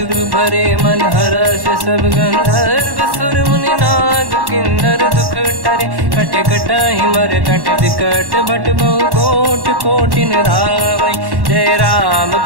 भरे मन हर्ष सब गंधर्व सुर मुनि नाग किन्नर दुख टरे कट कटाही मर कट विकट भट बहु कोट कोटिन रावै जय राम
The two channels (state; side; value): late; left; 1.1 ms